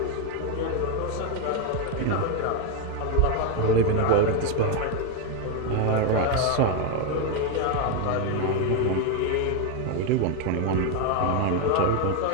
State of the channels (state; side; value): different; both; correlation 0.01